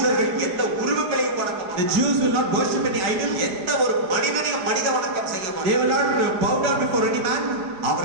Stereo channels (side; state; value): left; late; 4.9 ms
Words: them. யூதர்கள் எந்த உருவங்களையும் வணங்க The மாட்டார்கள். Jews will not worship any idol. எந்த ஒரு மனிதனையும் மனித வணக்கம் செய்ய They will மாட்டார்கள். not bow down before any man.